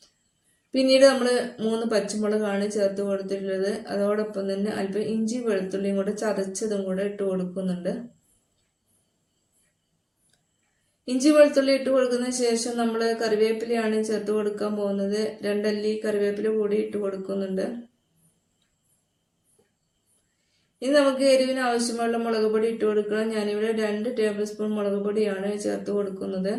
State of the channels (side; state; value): both; identical; correlation 1.00